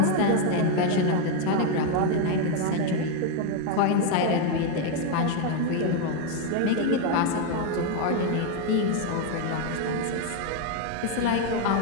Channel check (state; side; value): different; both; correlation 0.01